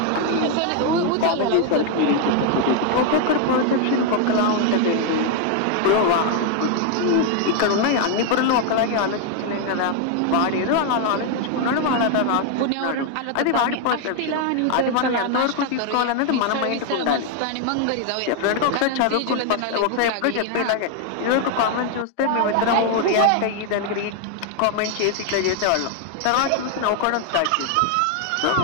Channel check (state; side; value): different; both; correlation 0.00